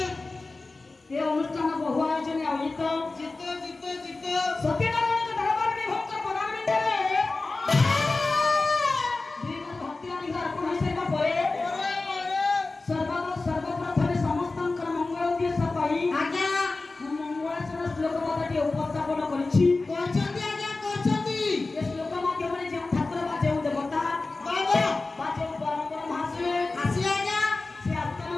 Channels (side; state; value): right; quieter; 3.5 dB